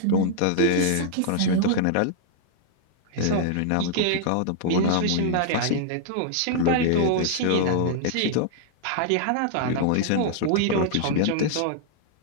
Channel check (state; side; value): different; both; correlation -0.01